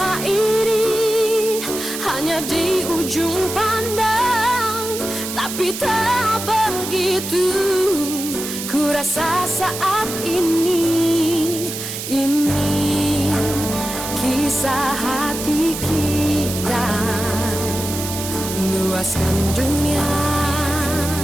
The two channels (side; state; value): right; noise; hiss, 7 dB below the sound